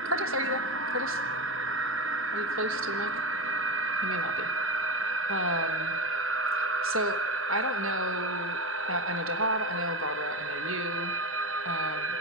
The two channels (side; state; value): both; normal; correlation 0.19